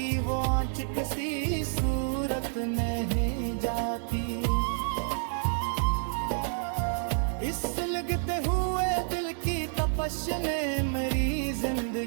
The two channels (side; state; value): left; silent; digital silence